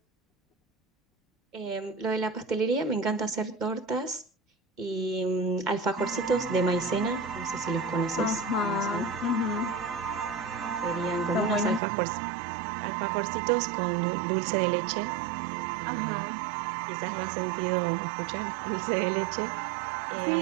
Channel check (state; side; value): drops out; left; at 11.8 s